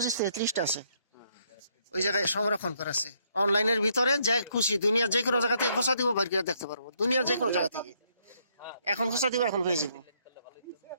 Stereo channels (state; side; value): inverted; both; correlation -0.71